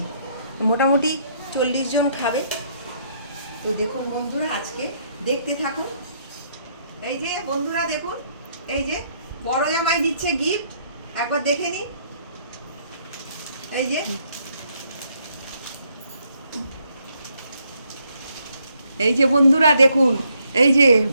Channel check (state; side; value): inverted; both; correlation -0.71